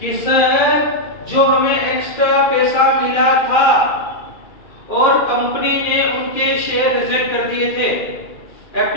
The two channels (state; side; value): late; right; 2.4 ms